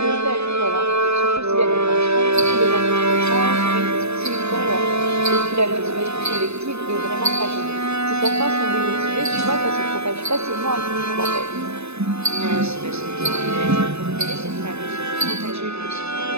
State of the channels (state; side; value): late; left; 0.80 ms